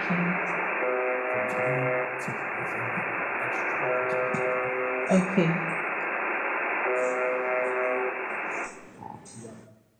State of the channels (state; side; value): identical; both; correlation 1.00